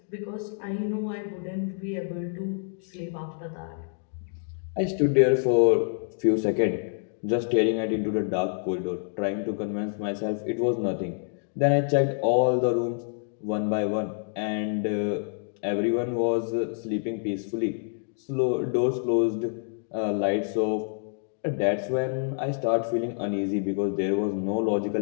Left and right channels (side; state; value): right; silent; digital silence